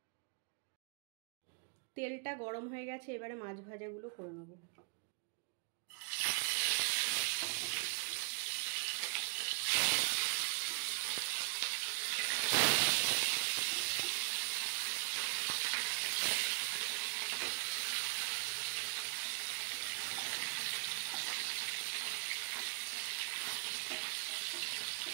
তেলটা গরম হয়ে গেছে, এবারে মাছ ভাজাগুলো করে নেব।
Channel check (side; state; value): left; quieter; 38.3 dB